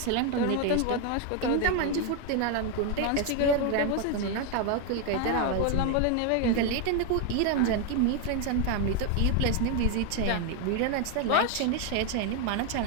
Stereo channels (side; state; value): both; different; correlation 0.01